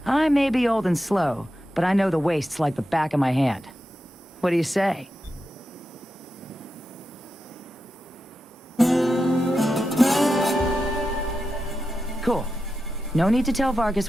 I may be old and slow, but I know the wastes like the back of my hand. What do you say? Cool. No need to tell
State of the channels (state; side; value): normal; both; correlation 0.89